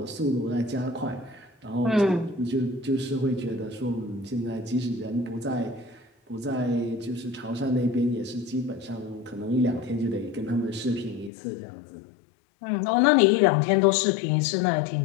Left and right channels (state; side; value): drops out; right; at 11.3 s